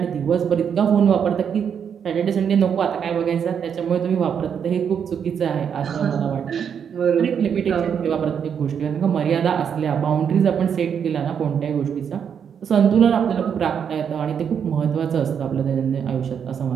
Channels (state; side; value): quieter; left; 7.7 dB